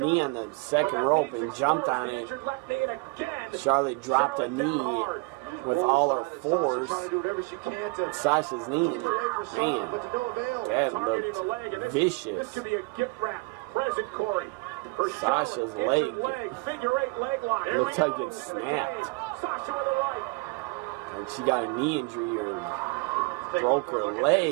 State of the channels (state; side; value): quieter; left; 28.1 dB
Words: Charlotte. on the second rope and jumped on it. Left knee, and again, Charlotte dropped a Charlotte down knee hard. with all her force. Trying to do whatever she can to Sasha's knee. keep her away from Charlotte, but Man, to no avail. that Targeting the leg, and looked this vicious. could be a gift wrap present, Corey. For Sasha's Charlotte, leg. injured Figure eight leg lock. Here Looks we like go. it snapped. Sasha with the right. And she got a knee injury or broke her